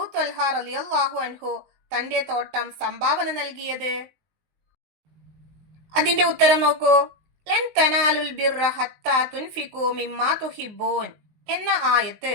ത്വൽഹ റളിയല്ലാഹു അൻഹു തന്റെ തോട്ടം സംഭാവന നൽകിയത്? അതിന്റെ ഉത്തരം നോക്കൂ. ലൻ തനാലുൽ ബിർറ ഹത്താ തുൻഫിഖൂ മിമ്മാ തുഹിബ്ബൂൻ എന്ന ആയത്ത്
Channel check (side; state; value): left; late; 20 ms